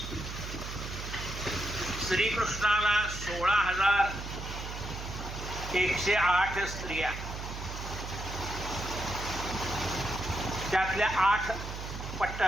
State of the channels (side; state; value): right; noise; hum, 8 dB below the sound